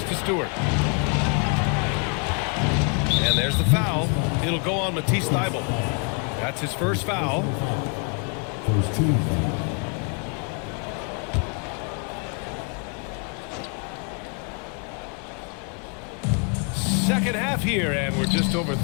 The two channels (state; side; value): quieter; right; 37.3 dB